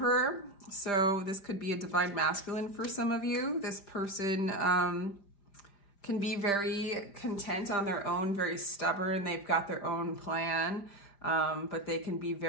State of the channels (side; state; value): right; late; 5.0 ms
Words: so this could be a divine masculine for some of you. This person can be very content on their own, very stubborn. They've got their own plan, but they can be